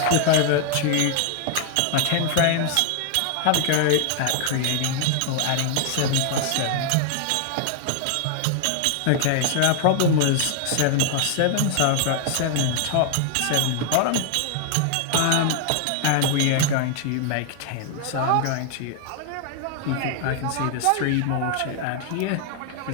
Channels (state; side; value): different; both; correlation 0.00